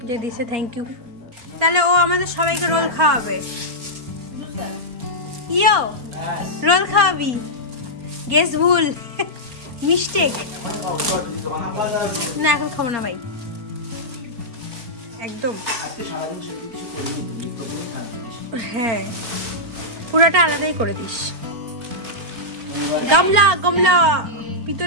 যে দিছে, থ্যাংক ইউ। তাহলে ও আমাদের সবাইকে রোল খাওয়াবে। ইয়ো রোল খাওয়াবি? গেস ভুল, মিস্টেক। না এখন খাবো না ভাই, একদম। আজকে সারাদিন কিছু করিনি। হ্যাঁ পুরাটা আলাদাই করে দিস। গামলা গামলা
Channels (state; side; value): late; left; 4.3 ms